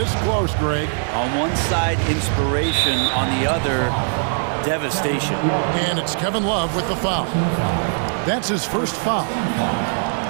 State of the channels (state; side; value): silent; left; 62 dB below the other